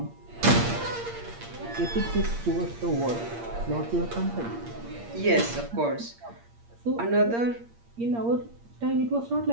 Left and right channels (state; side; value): late; left; 8.6 ms